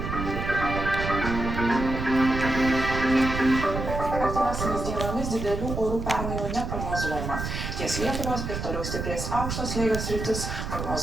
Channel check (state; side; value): noise; right; rumble, 4 dB below the sound